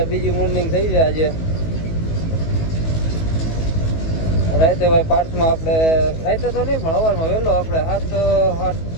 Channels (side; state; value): right; late; 19 ms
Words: બીજી મોર્નિંગ થઈ છે આજે રાતે ભાઈ પાર્સમાં આપણે રાતે તો નહીં પણ સવારમાં વહેલો આપણે